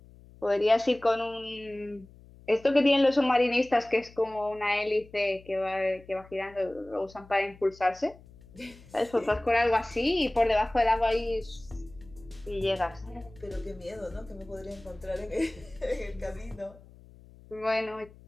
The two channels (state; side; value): noise; left; hum, 23 dB below the sound